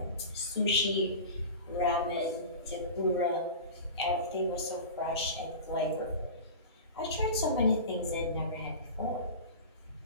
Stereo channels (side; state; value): both; inverted; correlation -0.32